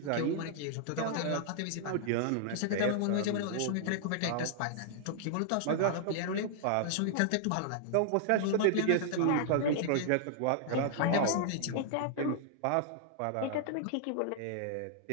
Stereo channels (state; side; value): different; both; correlation -0.01